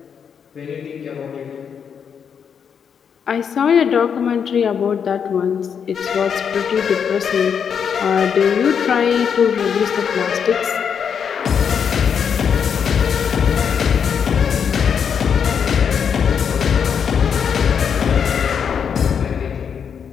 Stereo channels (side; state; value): right; quieter; 7.3 dB